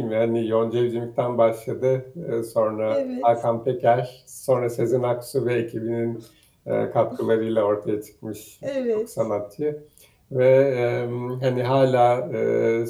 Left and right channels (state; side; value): identical; both; correlation 1.00